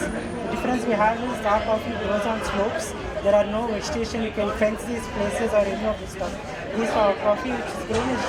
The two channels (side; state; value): both; identical; correlation 1.00